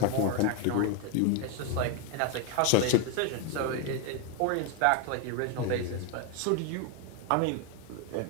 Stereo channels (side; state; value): both; different; correlation 0.01